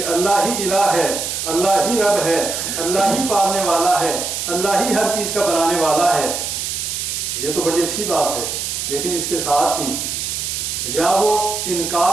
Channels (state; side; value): noise; right; hiss, 3 dB below the sound